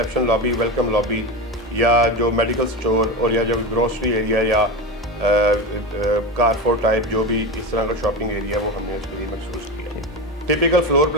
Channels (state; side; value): normal; both; correlation 0.21